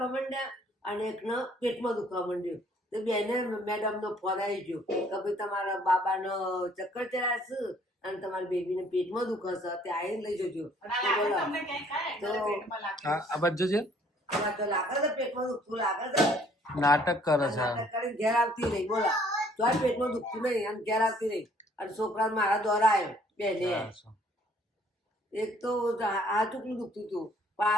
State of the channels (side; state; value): both; normal; correlation 0.61